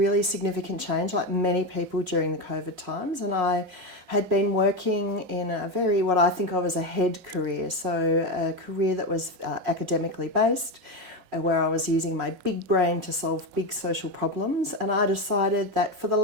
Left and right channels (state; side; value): late; left; 5.5 ms